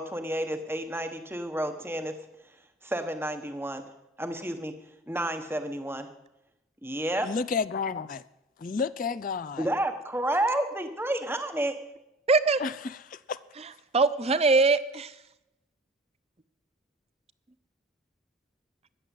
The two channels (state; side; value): normal; both; correlation 0.43